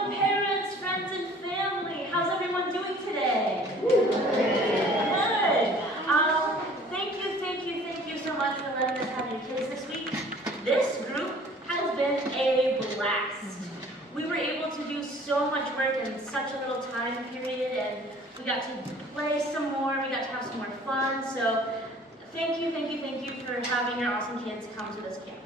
friends, and family, how's everyone doing today? Good. Thank you so much for letting us have your kids this week. This group has been a blast. We were able to do so much work in such a little time period, and we got to play some more, we got to have some more fun, so thank you for having your awesome kids come to this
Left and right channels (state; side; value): normal; both; correlation 0.51